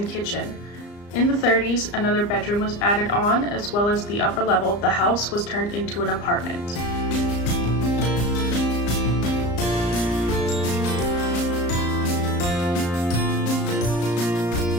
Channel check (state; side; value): late; right; 34 ms